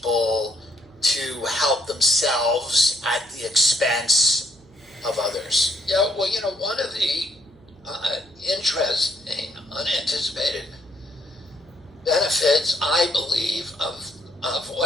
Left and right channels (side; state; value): right; noise; hum, 28 dB below the sound